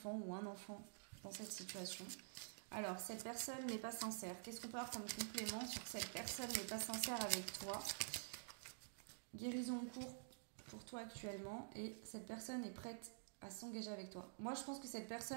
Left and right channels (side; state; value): left; silent; digital silence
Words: ou un enfant dans cette situation. Alors, cette personne n'est pas sincère. Qu'est-ce qu'on peut avoir comme complément sur cette personne n'est pas sincère avec toi? Guérison en cours pour toi actuellement et cette personne est prête à s'engager avec toi. Moi, je pense que cette